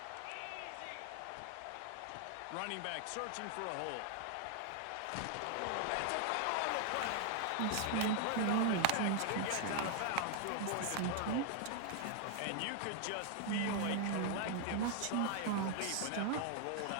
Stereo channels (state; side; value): different; both; correlation 0.00